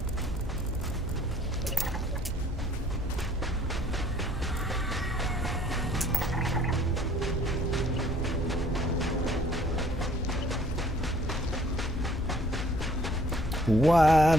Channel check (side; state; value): both; normal; correlation 0.58